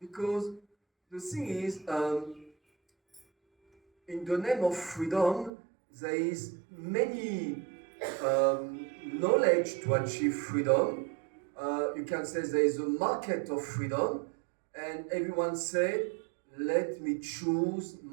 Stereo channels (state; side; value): drops out; left; at 5.5 s